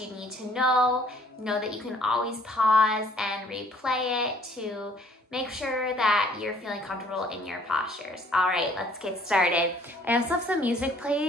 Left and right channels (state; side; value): normal; both; correlation 0.59